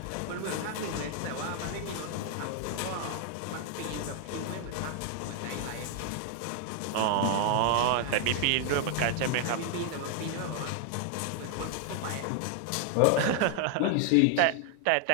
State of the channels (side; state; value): both; different; correlation 0.00